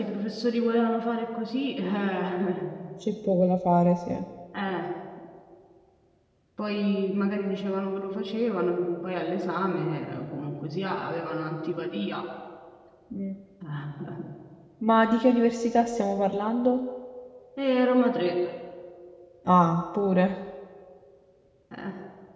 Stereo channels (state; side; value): identical; both; correlation 1.00